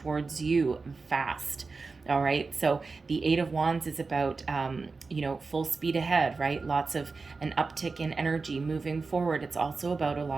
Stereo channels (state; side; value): quieter; left; 4.2 dB